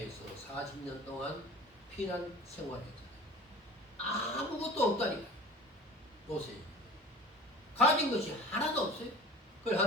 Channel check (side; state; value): both; normal; correlation 0.42